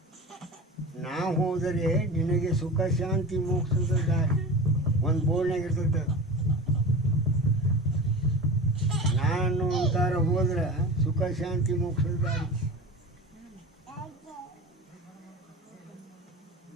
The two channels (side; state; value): both; normal; correlation 0.33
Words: ನಾ ಹೋದರೆ ನಿನಗೆ ಸುಖ ಶಾಂತಿ ಮೋಕ್ಷದ ದಾರಿ. ಒಂದು ಬೋರ್ಡ್ನಾಗ ಇರ್ತೈತೆ, ನಾನು ಅಂತಾರ ಹೋದ್ರೆ ಸುಖ ಶಾಂತಿ ಮೋಕ್ಷದ ದಾರಿ.